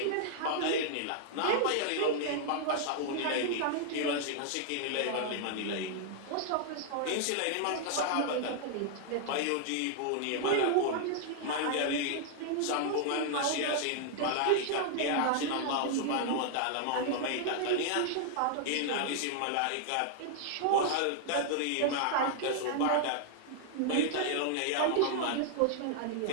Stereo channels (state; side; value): different; both; correlation -0.01